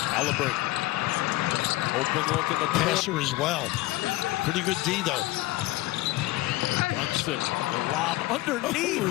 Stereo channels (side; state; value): right; quieter; 18.3 dB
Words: Halliburton. Open look in the passer as well. Pretty good D, though. Brunson, the lob